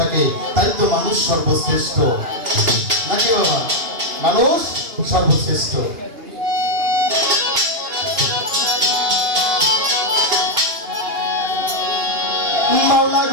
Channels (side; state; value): left; late; 2.8 ms